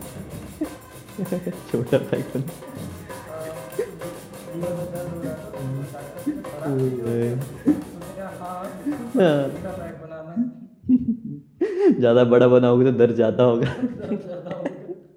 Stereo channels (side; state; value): both; identical; correlation 1.00